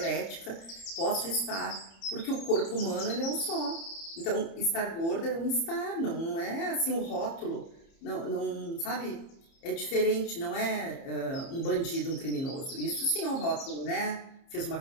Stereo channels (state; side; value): late; right; 30 ms